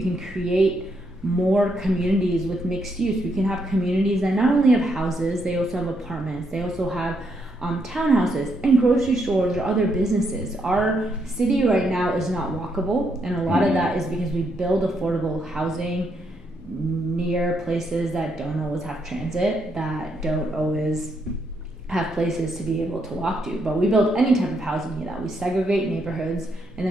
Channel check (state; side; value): normal; both; correlation 0.77